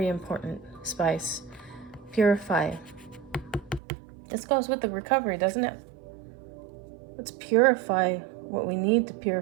important spice. Purify. This goes with the recovery, doesn't it? Let's purify what we need to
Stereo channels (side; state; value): left; drops out; at 3.8 s